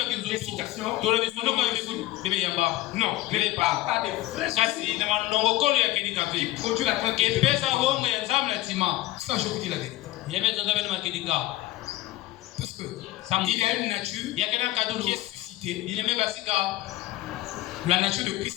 Non, mais pas des vrais soucis qui produisent la tranquillité. Ça, je vous dis la vérité. Parce qu'il y a une nature qui est suscitée. La nature de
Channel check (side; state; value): right; quieter; 16.4 dB